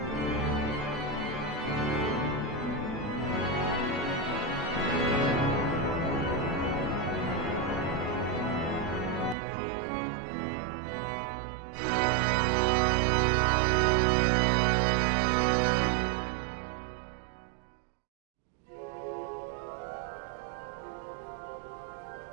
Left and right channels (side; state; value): left; drops out; at 9.3 s